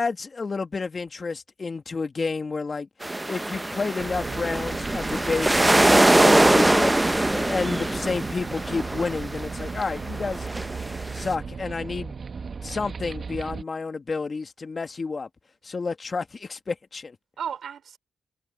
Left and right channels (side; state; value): both; normal; correlation 0.96